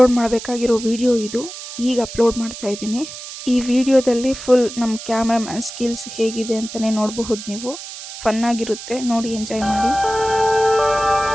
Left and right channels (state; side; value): noise; right; hiss, 12 dB below the sound